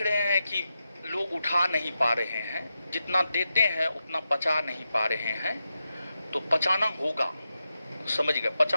रहे हैं कि लोग उठा नहीं पा रहे हैं। जितना देते हैं उतना पचा नहीं पा रहे हैं। तो पचाना होगा, समझ गए?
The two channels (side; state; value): both; inverted; correlation -0.88